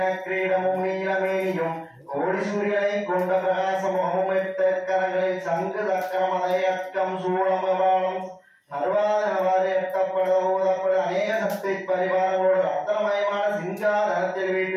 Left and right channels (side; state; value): both; identical; correlation 1.00